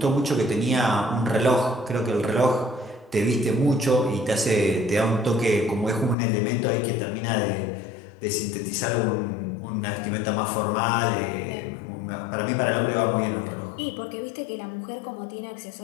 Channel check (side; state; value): right; drops out; at 6.2 s